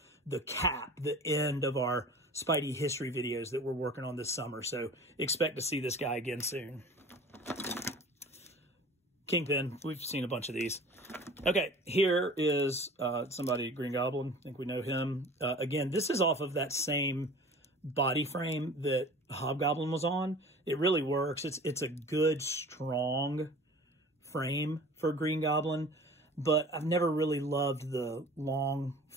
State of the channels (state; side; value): normal; both; correlation 0.42